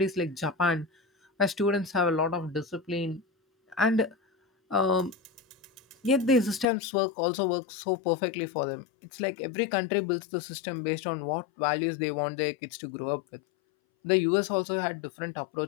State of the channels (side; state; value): right; drops out; at 6.7 s